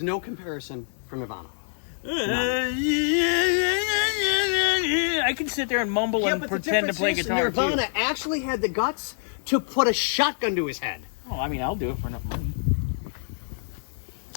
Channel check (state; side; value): silent; right; digital silence